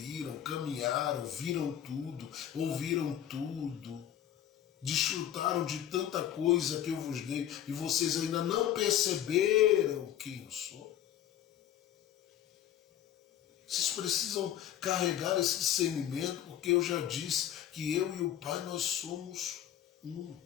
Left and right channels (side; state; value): right; quieter; 10.9 dB